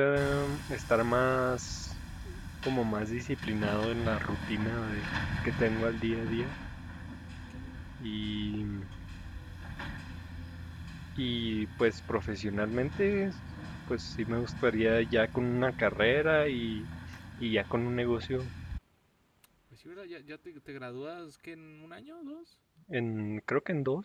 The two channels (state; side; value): identical; both; correlation 1.00